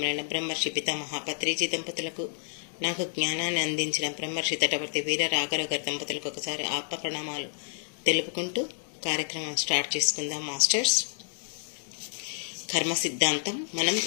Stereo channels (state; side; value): silent; right; digital silence